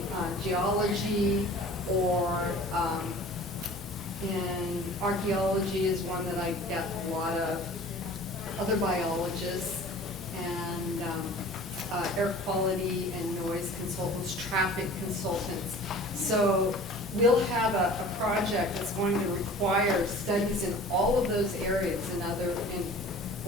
geology, or in archaeology is one that I get a lot of, other biologists, and air quality and noise consultants, traffic consultants. So we'll have a project that's going to require studies in all of those areas in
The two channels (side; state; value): both; normal; correlation 0.44